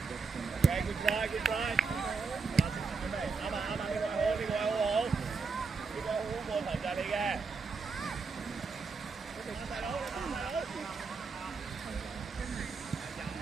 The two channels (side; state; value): left; quieter; 4.8 dB